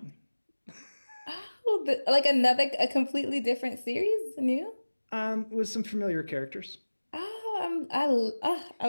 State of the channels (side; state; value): both; inverted; correlation -1.00